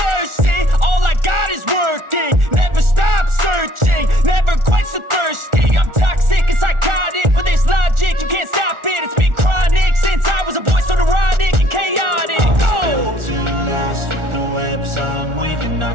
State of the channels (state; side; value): late; left; 1.4 ms